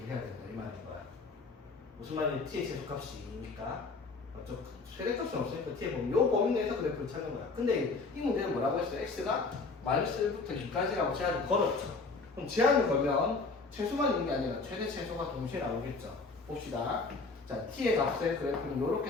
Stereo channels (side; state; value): right; quieter; 4.0 dB